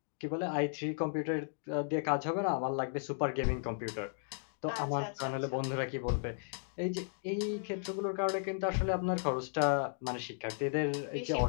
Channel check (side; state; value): right; silent; digital silence